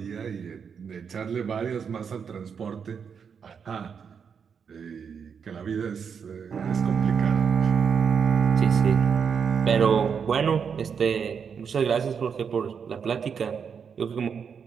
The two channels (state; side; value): quieter; left; 6.7 dB